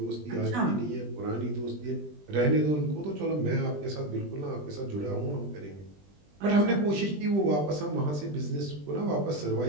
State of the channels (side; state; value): left; late; 20 ms